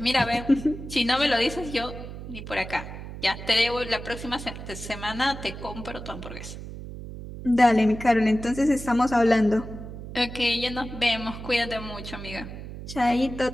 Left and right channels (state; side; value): noise; right; hum, 11 dB below the sound